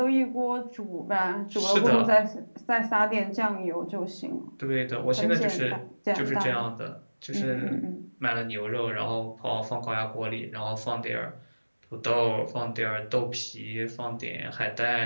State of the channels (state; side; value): inverted; both; correlation -1.00